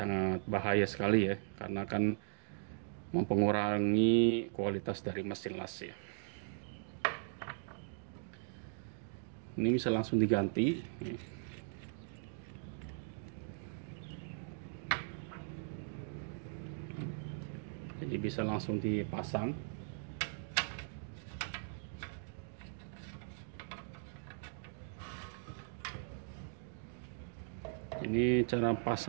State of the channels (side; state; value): left; silent; digital silence